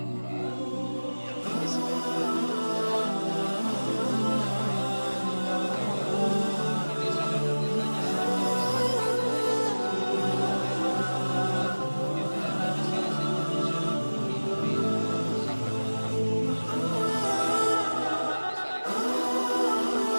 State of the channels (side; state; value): both; inverted; correlation -1.00